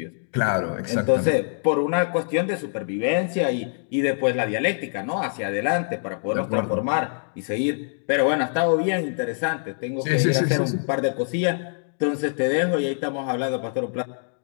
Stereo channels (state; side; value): silent; right; digital silence